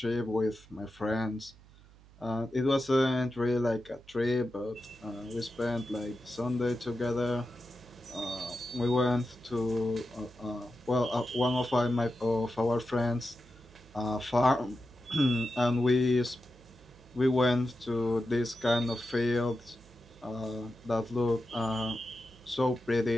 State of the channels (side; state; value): right; noise; hum, 24 dB below the sound